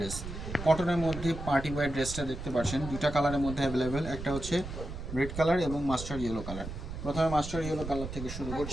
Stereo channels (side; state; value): right; noise; rumble, 8 dB below the sound